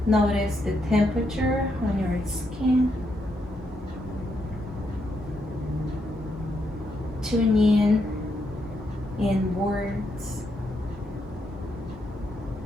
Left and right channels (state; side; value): normal; both; correlation 0.79